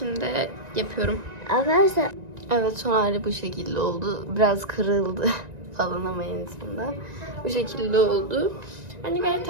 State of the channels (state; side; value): late; left; 1.9 ms